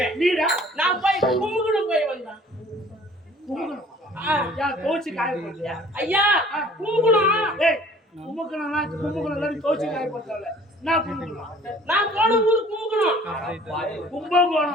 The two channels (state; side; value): normal; both; correlation 0.51